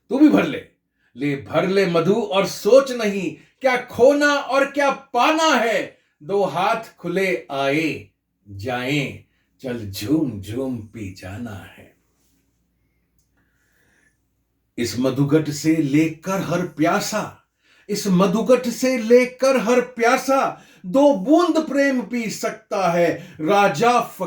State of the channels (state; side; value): identical; both; correlation 1.00